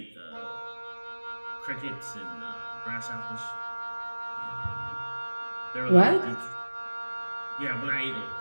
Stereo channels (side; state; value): both; inverted; correlation -1.00